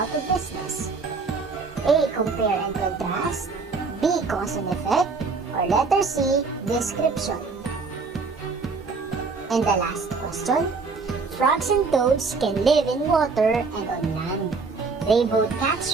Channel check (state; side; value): quieter; left; 4.5 dB